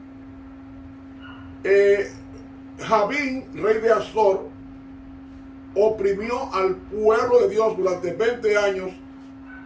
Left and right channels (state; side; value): identical; both; correlation 1.00